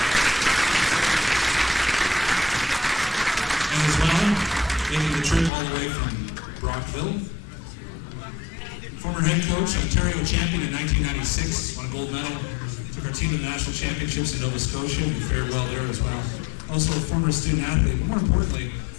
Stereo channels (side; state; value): right; drops out; at 5.5 s